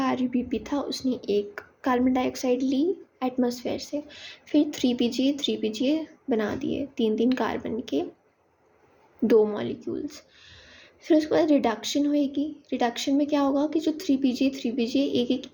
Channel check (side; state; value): both; identical; correlation 1.00